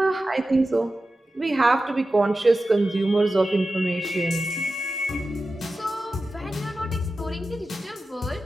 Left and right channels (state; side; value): normal; both; correlation 0.93